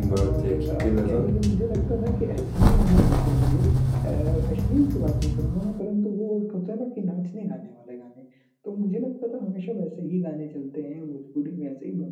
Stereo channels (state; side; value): identical; both; correlation 1.00